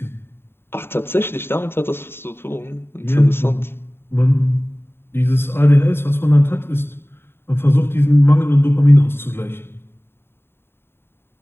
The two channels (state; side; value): late; right; 0.11 ms